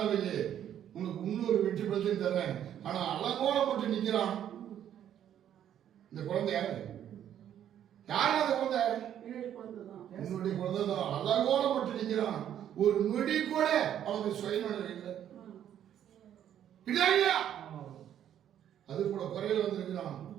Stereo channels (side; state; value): left; quieter; 10.3 dB